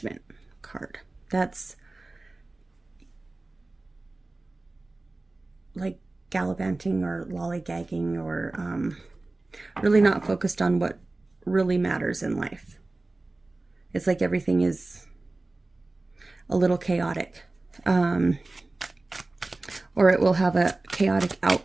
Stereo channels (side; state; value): left; quieter; 3.1 dB